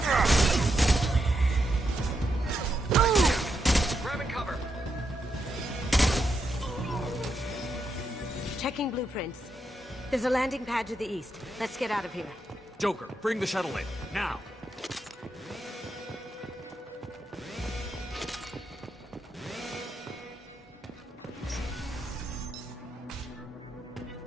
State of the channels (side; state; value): both; normal; correlation 0.83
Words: Grabbing cover. Checking blueprints. There's a landing pad to the east. Let's get out of here. Joker, bring the shuttle in, now!